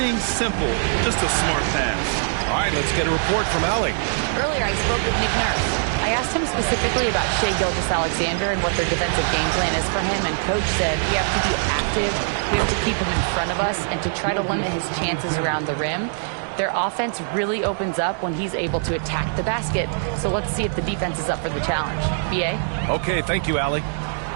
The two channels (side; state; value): left; silent; digital silence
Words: simple, just a smart pass. All right, let's get a report from Allie. Earlier I spoke with Nick Nurse. I asked him specifically about Shai Gilgeous-Alexander and what their defensive game plan is for him, and Coach said we have to be active, we have to keep him in front of us, and to try to limit his chances around the rim. Their offense really opens up when he's able to attack the basket. So let's see if the defense is up for the challenge. BA? Okay, thank you, Allie.